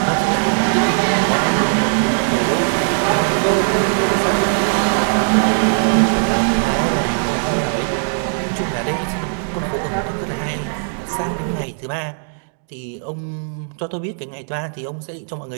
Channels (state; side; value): silent; left; digital silence